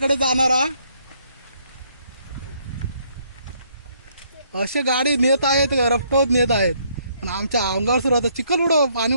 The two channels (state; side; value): inverted; both; correlation -0.69